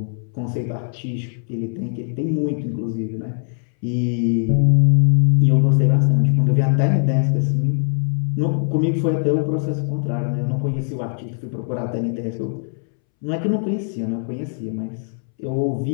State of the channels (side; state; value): right; silent; 65 dB below the other